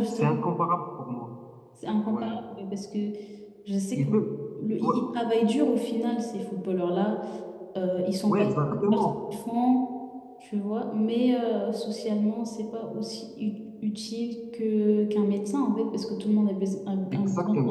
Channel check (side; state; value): both; identical; correlation 1.00